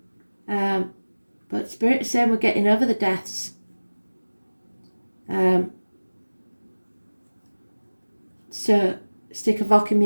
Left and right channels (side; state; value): both; inverted; correlation -1.00